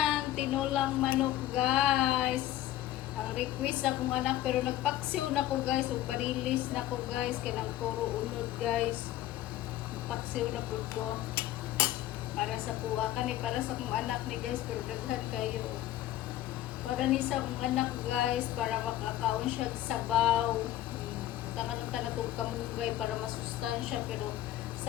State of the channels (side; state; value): right; quieter; 13.8 dB